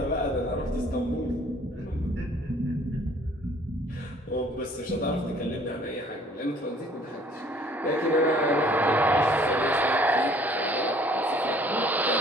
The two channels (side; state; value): both; normal; correlation 0.56